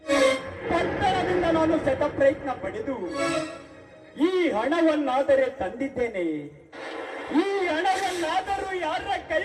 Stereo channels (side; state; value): both; identical; correlation 1.00